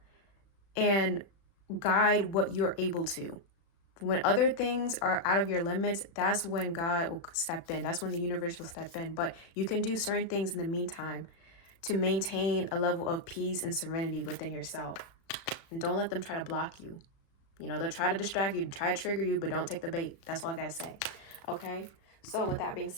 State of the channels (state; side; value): late; right; 35 ms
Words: and guide what you're able to. When other things are out of your limits, that's when God will step in. That's when the universe will step in. But you can do certain things in the meantime to maintain a level of peace and serenity within yourself. And don't let them try to block you. You know, they'll try to distract you, try to trigger you, but don't take the bait. That's all I got to say. Okay? So with that being